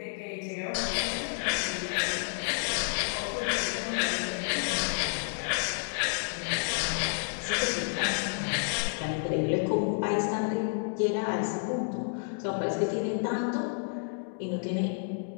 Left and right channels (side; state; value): right; silent; digital silence